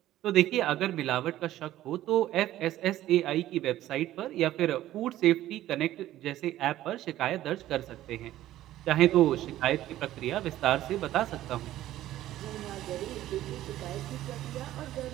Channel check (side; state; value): left; quieter; 14.0 dB